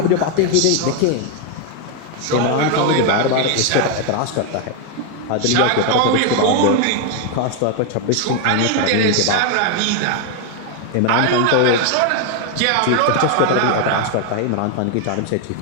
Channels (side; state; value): both; different; correlation 0.01